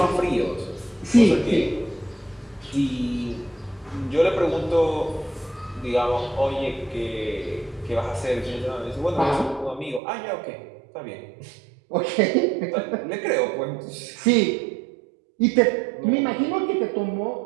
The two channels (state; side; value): drops out; left; at 10.0 s